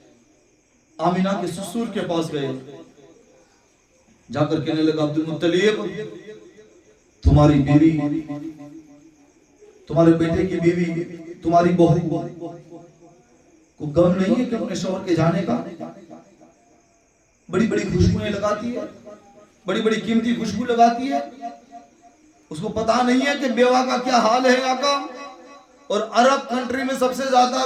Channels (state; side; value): identical; both; correlation 1.00